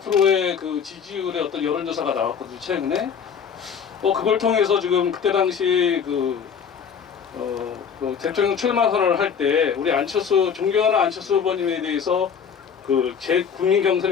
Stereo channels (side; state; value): right; quieter; 6.9 dB